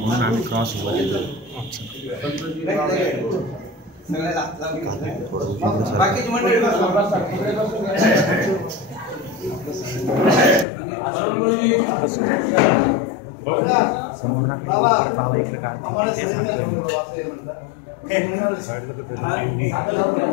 आम्ही क्रॉस वर येतो बाकीची मंडळी समोर ना काही परत बाबा इकडे काढते ते सांगतोय मी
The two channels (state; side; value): drops out; right; at 10.7 s